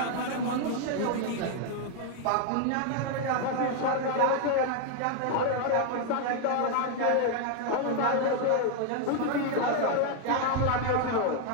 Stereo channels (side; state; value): both; different; correlation 0.00